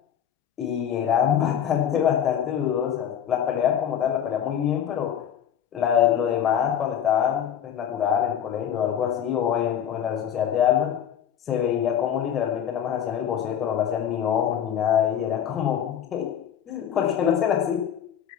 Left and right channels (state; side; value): quieter; right; 9.2 dB